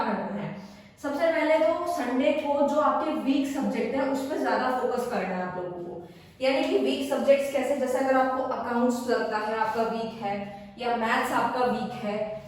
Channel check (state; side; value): identical; both; correlation 1.00